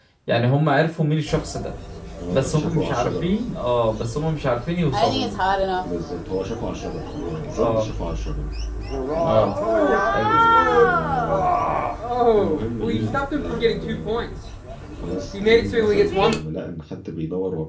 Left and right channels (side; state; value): both; identical; correlation 1.00